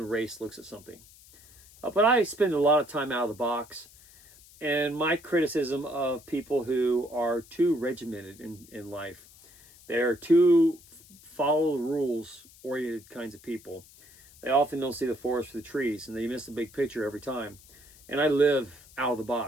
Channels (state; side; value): noise; left; hiss, 24 dB below the sound